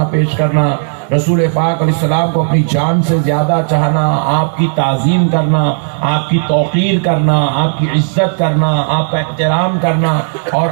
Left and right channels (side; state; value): left; silent; digital silence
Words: پیش کرنا، رسول پاک علیہ السلام کو اپنی جان سے زیادہ چاہنا، آپ کی تعظیم کرنا، آپ کی توقیر کرنا، آپ کی عزت کرنا، آپ کا احترام کرنا، اور